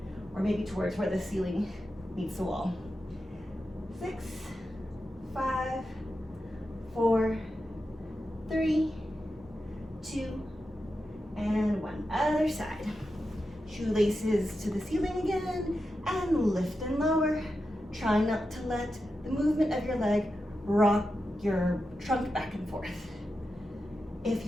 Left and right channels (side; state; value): both; normal; correlation 0.89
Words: or maybe towards where the ceiling meets the wall. 6, 5, 4, 3, 2, and 1. Other side. Shoelaces to the ceiling again, and lift and lower. Try not to let the movement of your leg rock your trunk back and forth. If